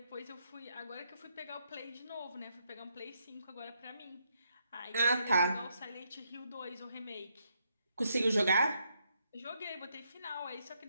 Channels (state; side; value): inverted; both; correlation -0.77